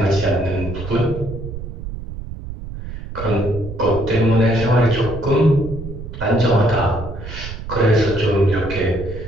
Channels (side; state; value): right; noise; rumble, 9 dB below the sound